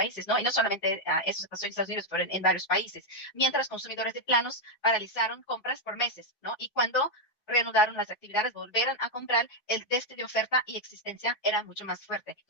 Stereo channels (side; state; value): right; late; 4.7 ms